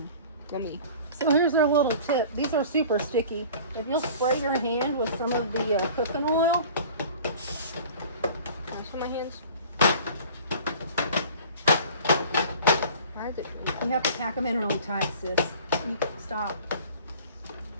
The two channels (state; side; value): inverted; both; correlation -0.44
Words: Gummy. So here's our little tip. These are super sticky. If you'll spray your hand with some of the cooking oil. Can I spray my hands? Why is it? You have to pack them in really tight, sis. Stop.